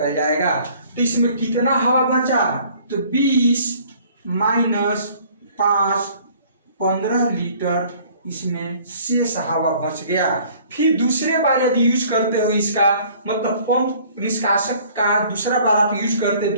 जाएगा। तो इसमें कितना हवा बचा, तो 20 माइनस 5 15 लीटर इसमें शेष हवा बच गया। फिर दूसरे बार यदि यूज करते हो इसका मतलब पंप निष्कासक का दूसरा बार आप यूज करते,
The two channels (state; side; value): inverted; both; correlation -0.55